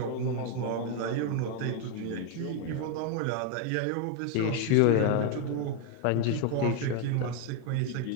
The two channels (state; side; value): different; both; correlation 0.01